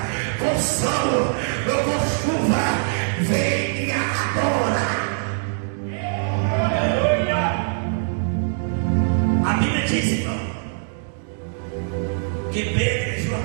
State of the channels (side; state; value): left; silent; digital silence